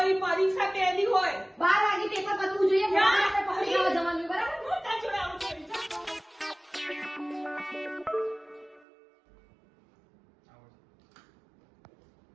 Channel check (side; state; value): left; drops out; at 8.8 s